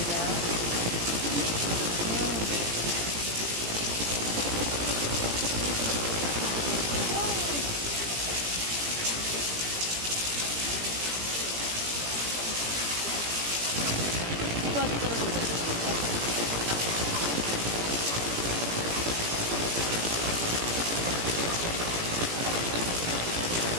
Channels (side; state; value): left; late; 17 ms